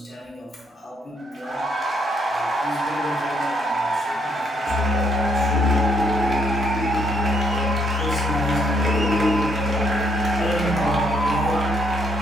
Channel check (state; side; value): normal; both; correlation 0.71